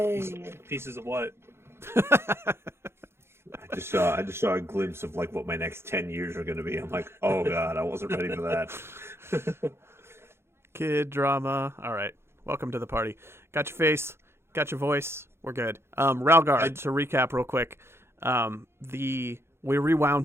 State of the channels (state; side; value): late; left; 0.12 ms